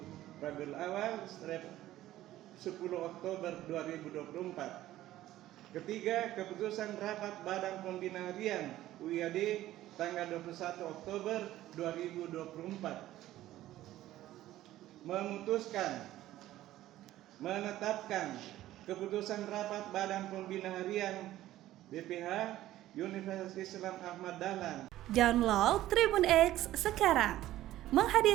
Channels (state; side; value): quieter; left; 14.5 dB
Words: Rabiul Awal 10 Oktober 2024. Ketiga, keputusan rapat Badan Pembina Harian UIAD tanggal 21 Oktober 2024 memutuskan menetapkan keputusan rapat Badan Pembina Harian BPH Universitas Islam Ahmad Dahlan. Download Tribun X sekarang,